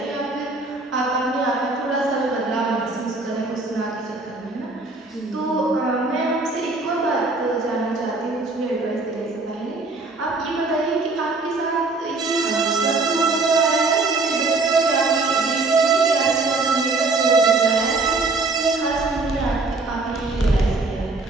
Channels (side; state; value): left; quieter; 3.5 dB